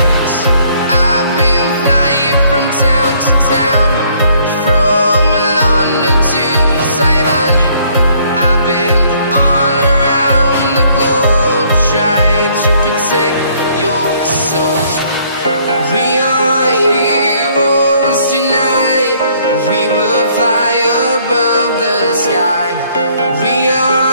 I've been flying from town to town, from London to Taiwan. I've been all around the globe, trying to protect your soul. We are heroes tonight. We will fly above the sky. We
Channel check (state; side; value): inverted; both; correlation -0.64